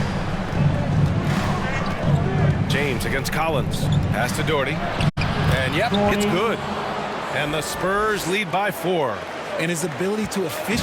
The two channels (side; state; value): both; identical; correlation 1.00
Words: James against Collins. Pass to Doherty. And yep, it's good. And the Spurs lead by 4. And his ability to